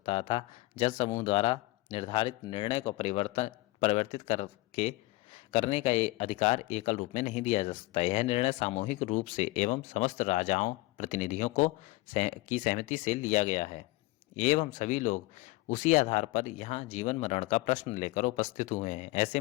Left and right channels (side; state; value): right; quieter; 20.7 dB